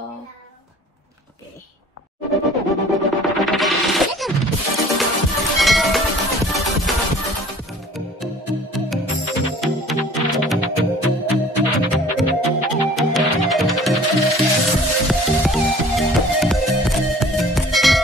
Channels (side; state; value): both; normal; correlation 0.49